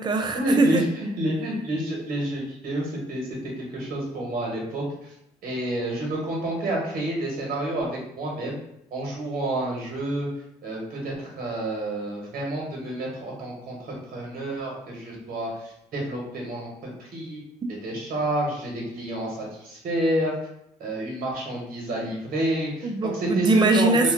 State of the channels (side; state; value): both; normal; correlation 0.57